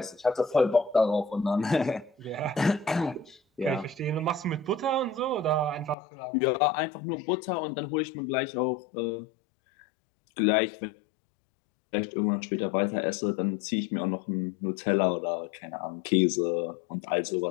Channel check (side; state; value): right; drops out; at 6.0 s